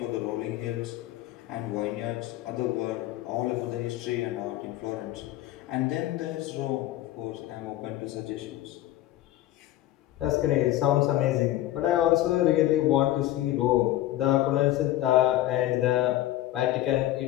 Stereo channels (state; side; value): quieter; right; 14.6 dB